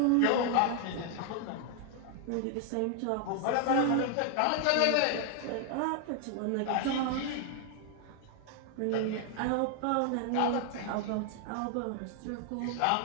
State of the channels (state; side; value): different; both; correlation 0.00